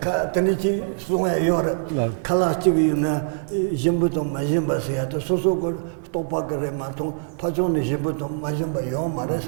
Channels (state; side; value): silent; left; digital silence